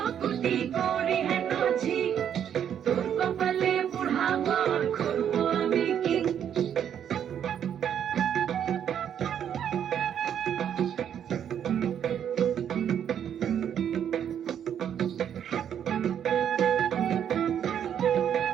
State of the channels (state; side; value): quieter; left; 9.1 dB